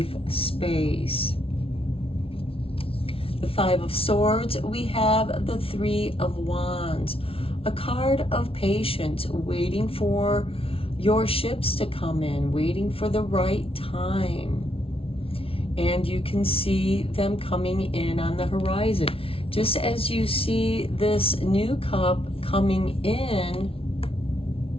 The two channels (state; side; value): late; right; 0.26 ms